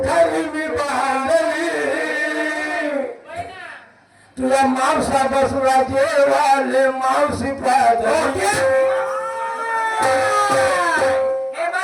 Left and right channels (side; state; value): both; identical; correlation 1.00